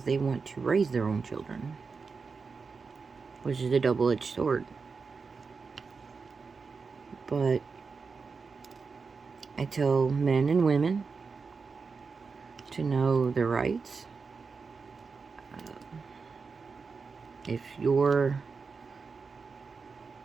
they want to raise their own children, which is a double-edged sword. But I tell men and women to know their rights. If you're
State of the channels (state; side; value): quieter; left; 4.9 dB